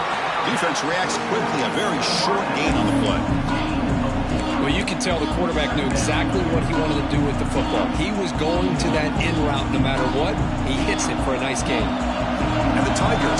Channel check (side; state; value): both; identical; correlation 1.00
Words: Defense reacts quickly. A very short gain on the play. Well, you can tell the quarterback knew exactly what he wanted to do with the football. He was going to that in route no matter what. He hits it for a nice gain. And the Tigers